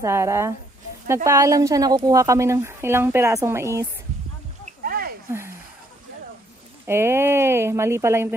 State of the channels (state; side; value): normal; both; correlation 0.68